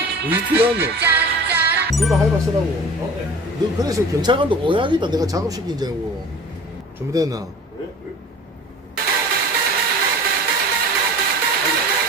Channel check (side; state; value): both; normal; correlation 0.41